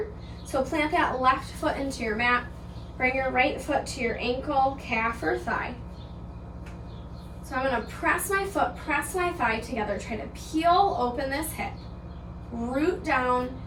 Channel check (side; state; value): both; identical; correlation 1.00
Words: So plant that left foot into your mat. Bring your right foot to your ankle, calf, or thigh. So I'm going to press my foot, press my thigh together. Try to peel open this hip. Root down